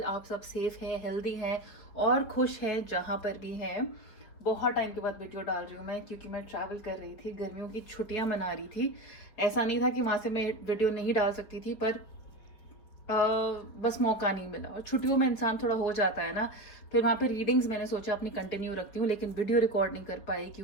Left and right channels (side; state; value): right; late; 4.9 ms